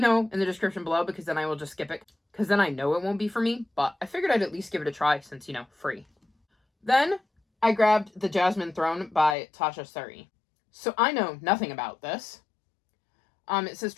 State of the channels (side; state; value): right; drops out; at 9.3 s